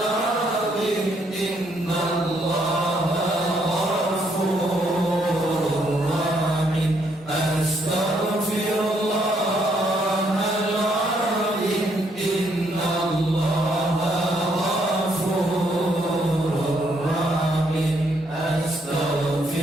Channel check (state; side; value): normal; both; correlation 0.72